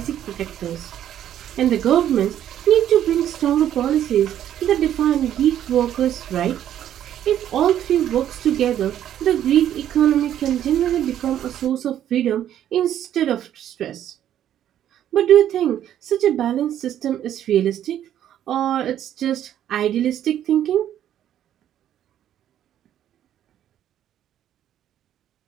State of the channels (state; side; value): quieter; left; 10.9 dB